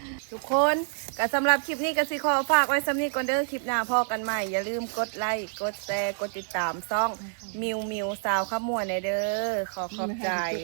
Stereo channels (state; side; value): silent; left; 55 dB below the other